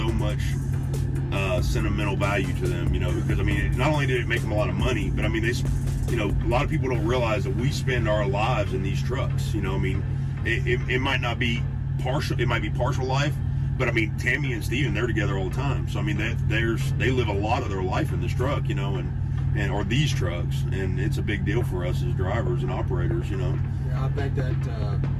much sentimental value to them, you know, because I mean not only did it make them a lot of money, but I mean a lot of people don't realize that we spend our lives in these trucks, you know. I mean it might not be partial, it might be partial life, but I mean Tammy and Steven, they're together all the time, so I mean they live a lot of their life in this truck, you know, or these trucks, and it's a big deal for us as drivers and operators, you know. Yeah, I think that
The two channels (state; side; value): identical; both; correlation 1.00